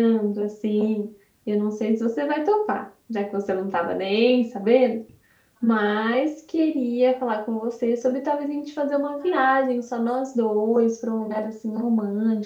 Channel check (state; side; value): identical; both; correlation 1.00